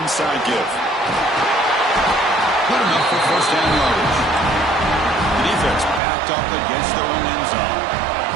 give. Good enough for 1st down yardage. The defense backed up against their own end zone.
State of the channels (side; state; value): left; drops out; at 6.0 s